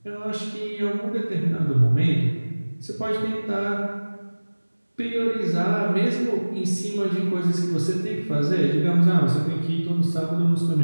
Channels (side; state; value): both; inverted; correlation -1.00